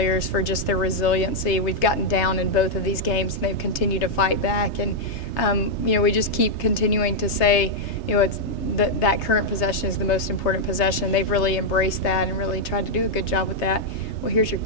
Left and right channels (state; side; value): late; right; 3.3 ms